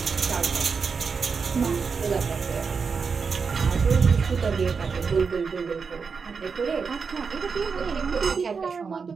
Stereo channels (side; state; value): left; quieter; 5.4 dB